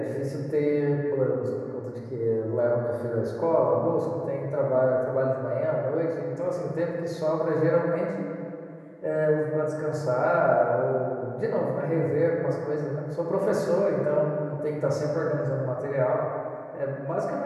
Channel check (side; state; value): both; identical; correlation 1.00